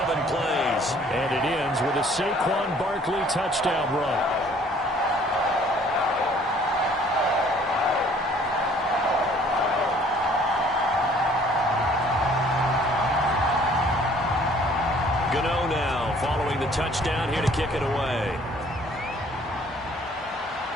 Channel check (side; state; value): both; normal; correlation 0.57